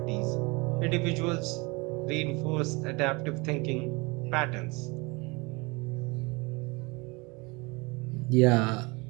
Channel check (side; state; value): left; quieter; 26.6 dB